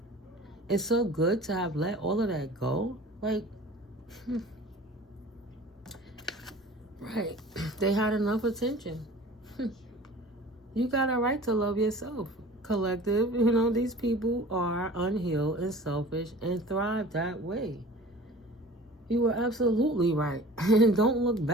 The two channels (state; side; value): normal; both; correlation 0.43